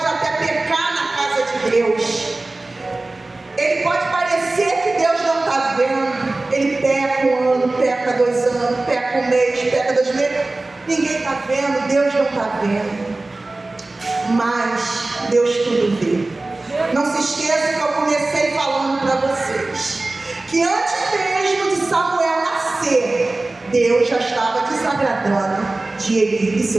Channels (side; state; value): left; quieter; 3.0 dB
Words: até pecar na casa de Deus. Ele pode parecer que Deus não está vendo. Ele peca 1 ano, peca 2 anos, peca 1 mês, peca 2 meses. Ninguém está vendo, Deus não está vendo. Mas Deus tudo vê. Não se esqueça que eu comecei falando para vocês que antes mesmo de Samuel nascer, Deus já estava desagradando de Eli e